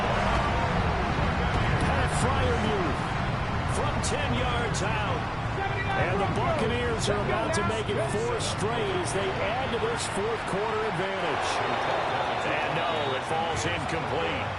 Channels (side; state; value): both; identical; correlation 1.00